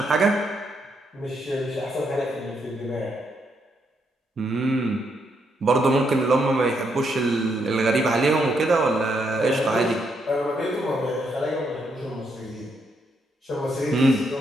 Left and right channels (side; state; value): both; normal; correlation 0.77